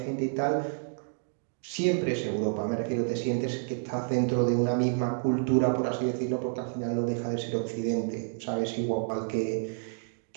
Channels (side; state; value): left; silent; digital silence